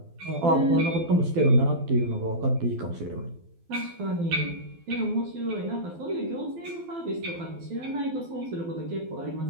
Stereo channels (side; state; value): left; late; 12 ms